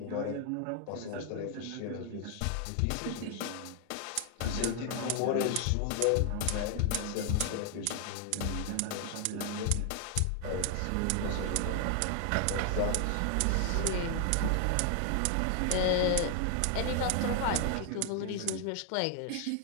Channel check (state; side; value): different; both; correlation 0.00